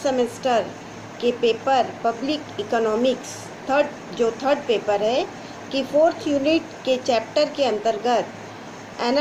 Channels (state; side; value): identical; both; correlation 1.00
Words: के paper public economics third paper है कि फोर्थ यूनिट के चैप्टर के अंतर्गत